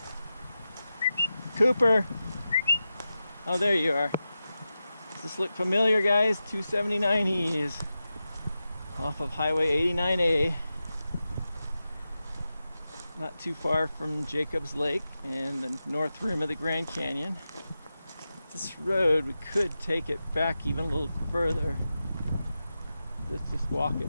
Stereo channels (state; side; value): inverted; both; correlation -0.92